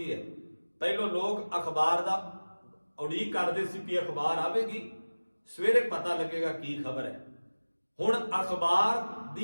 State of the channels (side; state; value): both; inverted; correlation -1.00